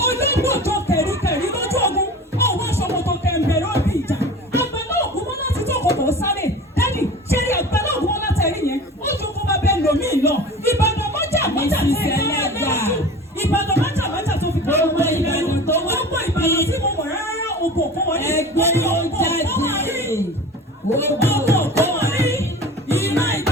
Olóńgbò tó kẹ̀ríkẹ̀rí lójú ogun, ọ̀wọ́ aṣọ́kò tó kẹ̀mbẹ̀ lóbi ìjà. Àgbàlá ògùn mọ́ láti tó kòkò sáré. Dádì, ṣé rí àgbàlá ògùn mọ́ láti ẹ̀rí yẹn? Ó ju kó bá bẹ́ẹ̀ lòmí lọ. Ìbàdàn mọ́jà ti ẹ̀ẹ́dẹ́gbà. Ìbàdàn mọ́jà tó fi kọ́ ọmọ Ìbàdàn tó wá. Gbogbo Ìbàdàn tí mo mọ̀ rárá ògbò kó wọlé. Ẹgbẹ́ ló jáde. Ògbò kó wọlé. Ìmọ̀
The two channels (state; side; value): normal; both; correlation 0.37